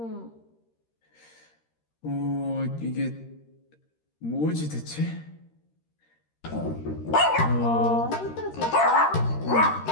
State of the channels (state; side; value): late; right; 13 ms